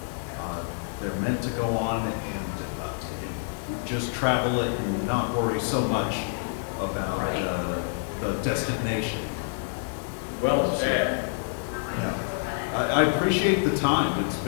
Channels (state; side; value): silent; right; digital silence